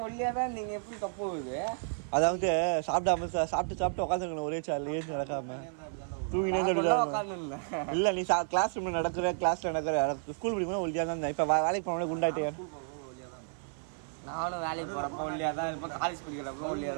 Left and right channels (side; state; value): left; silent; 56 dB below the other